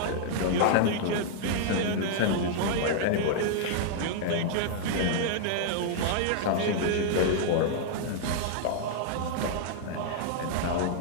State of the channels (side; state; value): both; different; correlation -0.01